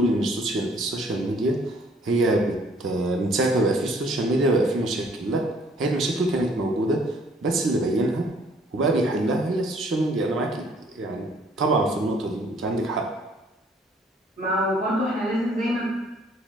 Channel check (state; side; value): normal; both; correlation 0.61